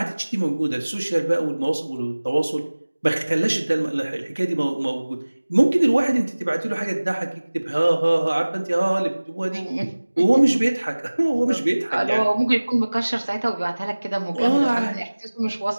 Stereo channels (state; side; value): inverted; both; correlation -1.00